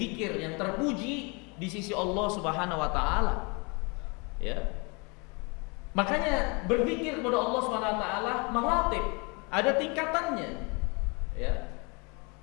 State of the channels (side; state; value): right; quieter; 30.8 dB